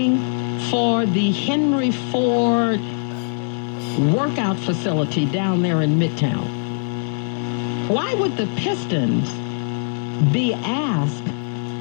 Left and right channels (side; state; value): right; silent; digital silence